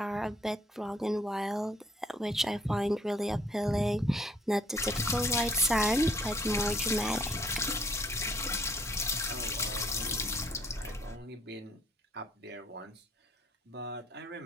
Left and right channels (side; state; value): both; normal; correlation 0.64